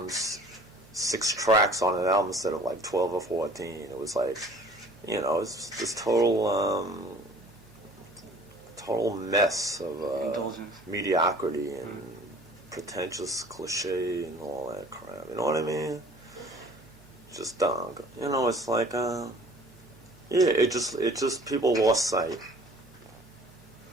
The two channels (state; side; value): normal; both; correlation 0.50